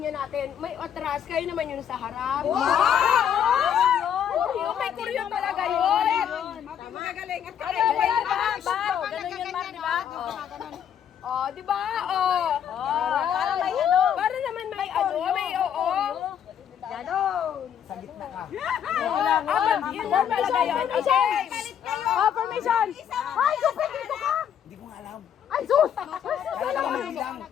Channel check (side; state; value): right; quieter; 8.9 dB